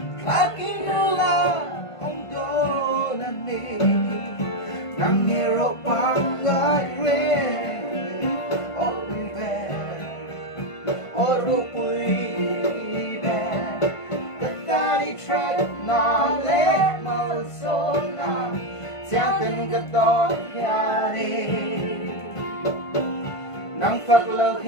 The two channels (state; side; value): late; right; 1.5 ms